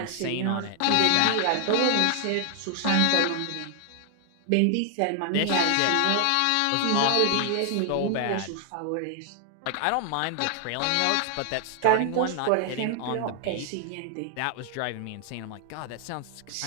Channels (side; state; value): both; different; correlation 0.00